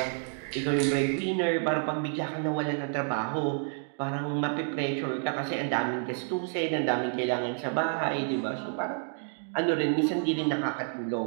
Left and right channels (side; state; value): left; silent; 56 dB below the other